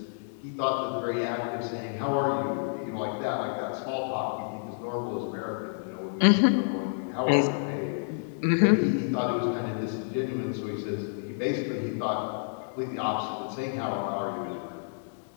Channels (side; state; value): right; silent; 58 dB below the other